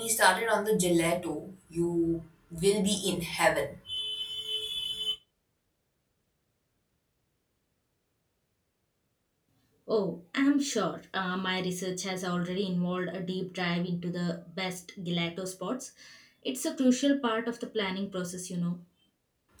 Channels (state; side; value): identical; both; correlation 1.00